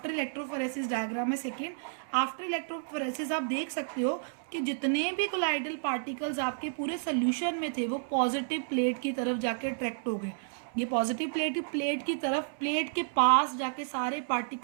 इलेक्ट्रोफोरेसिस डायग्राम है सेकेंड. आफ्टर इलेक्ट्रोफोरेसिस आप देख सकते हो कि जितने भी कोलाइडल पार्टिकल्स आपके पूरे सोल्यूशन में थे वो पॉजिटिव प्लेट की तरफ जाके अट्रैक्ट हो गए. ये पॉजिटिव प्लेट की तरफ, प्लेट के पास जाके सारे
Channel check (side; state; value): left; silent; 57 dB below the other